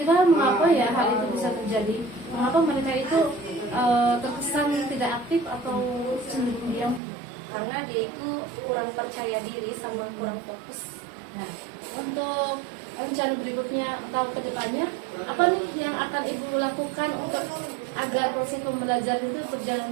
mengapa ya hal itu bisa terjadi? Mengapa mereka itu terkesan tidak aktif atau cenderung diam? Karena dia itu kurang percaya diri sama kurang fokus. Nah, untuk rencana berikutnya atau kedepannya, apa nih yang akan Ibu lakukan untuk agar proses pembelajaran itu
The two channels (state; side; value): drops out; left; at 7.0 s